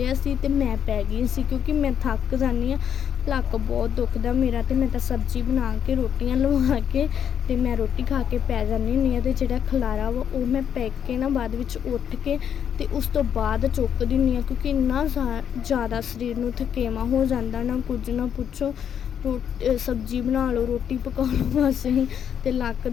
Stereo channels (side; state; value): right; quieter; 8.6 dB